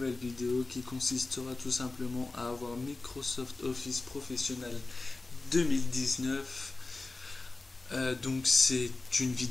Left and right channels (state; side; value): quieter; right; 3.3 dB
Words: vidéo qui consistera tout simplement à avoir Microsoft Office Professionnel 2019. Donc c'est une